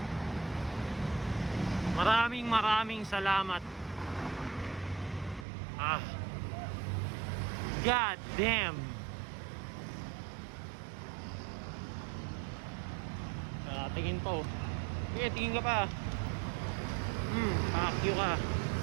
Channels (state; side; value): drops out; left; at 5.5 s